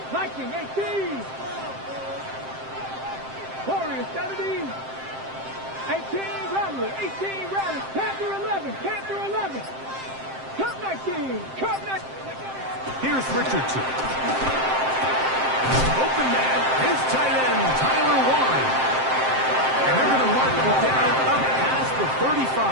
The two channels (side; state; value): left; late; 7.6 ms